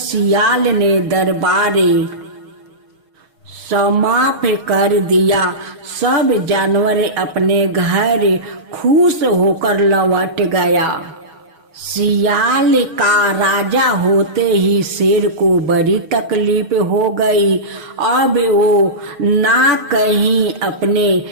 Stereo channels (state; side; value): late; left; 6.4 ms